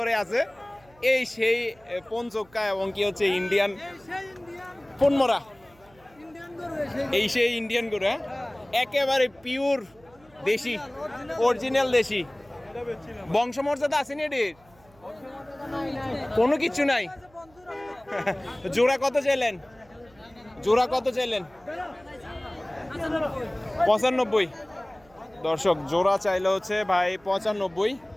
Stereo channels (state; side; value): noise; right; hum, 29 dB below the sound